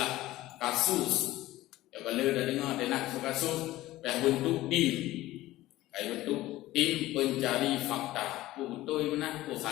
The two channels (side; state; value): right; quieter; 16.5 dB